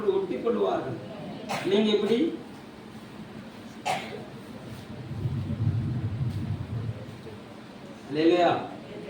ஒட்டி கொள்ளுவார்கள். நீங்க எப்படி? அல்லேலூயா.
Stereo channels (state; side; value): identical; both; correlation 1.00